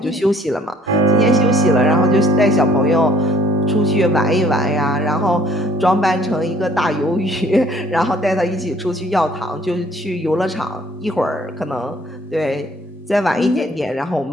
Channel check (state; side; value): normal; both; correlation 0.59